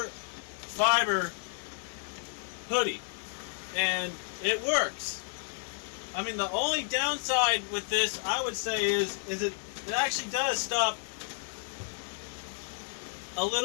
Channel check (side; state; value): right; silent; 56 dB below the other